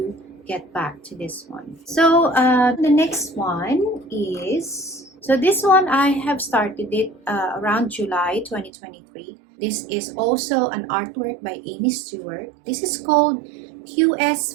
get back to this one. So the next one is, so this one I have started it around July 2023. This is also an artwork by Amy Stewart. This is called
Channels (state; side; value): drops out; left; at 8.7 s